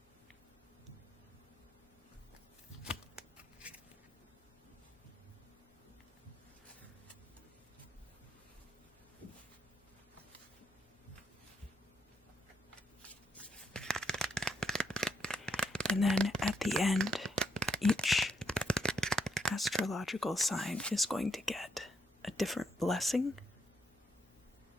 And then at the end, each astrological sign is going to get a different blessing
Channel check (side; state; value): both; normal; correlation 0.76